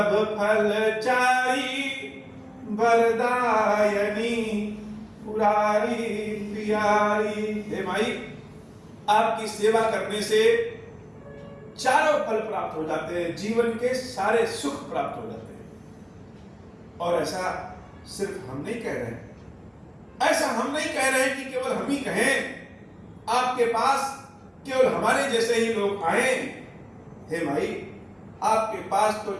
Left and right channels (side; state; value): both; identical; correlation 1.00